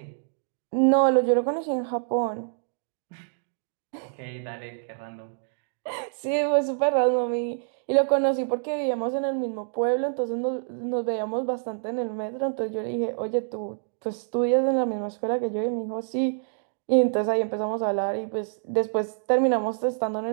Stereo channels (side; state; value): left; silent; digital silence